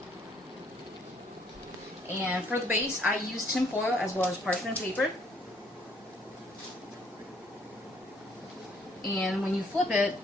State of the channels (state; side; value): normal; both; correlation 0.65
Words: it. And for the base, I use tin foil as well as parchment paper. And when you flip it,